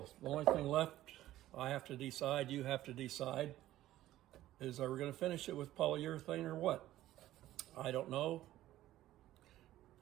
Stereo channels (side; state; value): left; quieter; 14.4 dB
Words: the only thing left I have to decide, you have to decide, is are we going to finish it with polyurethane or what? I don't know.